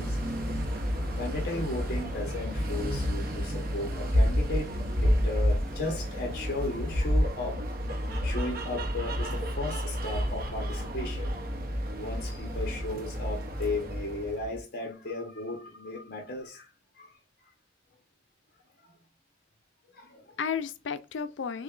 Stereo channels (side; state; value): both; normal; correlation 0.73